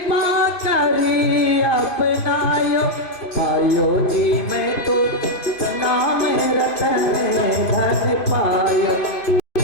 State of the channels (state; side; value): late; right; 2.5 ms